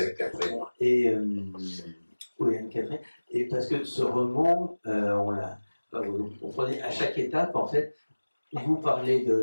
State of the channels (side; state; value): both; inverted; correlation -1.00